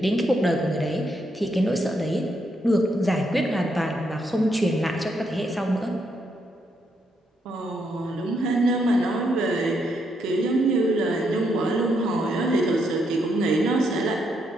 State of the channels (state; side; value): normal; both; correlation 0.77